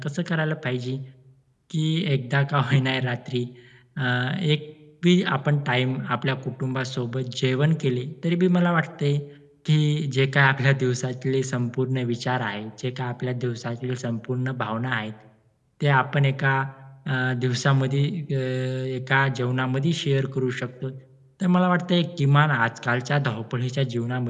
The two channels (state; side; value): identical; both; correlation 1.00